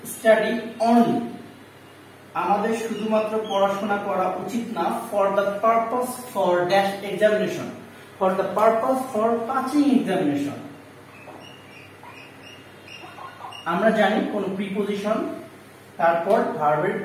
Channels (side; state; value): both; identical; correlation 1.00